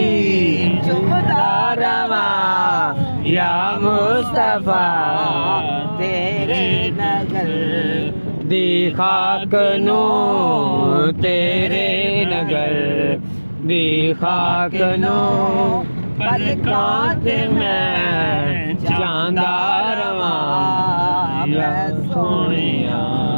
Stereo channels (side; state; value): both; inverted; correlation -1.00